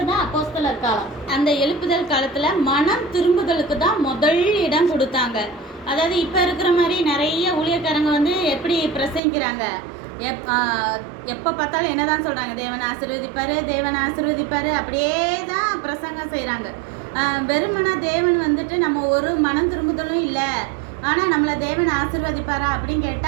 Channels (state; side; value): drops out; left; at 9.2 s